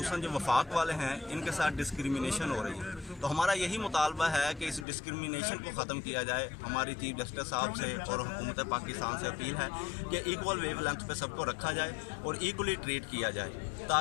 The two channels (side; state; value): right; drops out; at 4.9 s